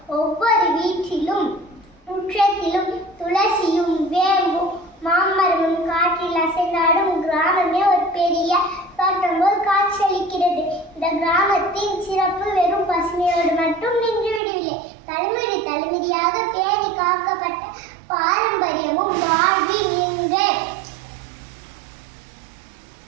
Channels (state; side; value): drops out; left; at 14.4 s